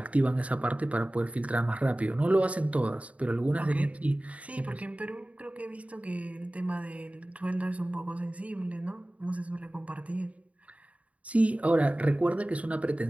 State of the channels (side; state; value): left; late; 0.067 ms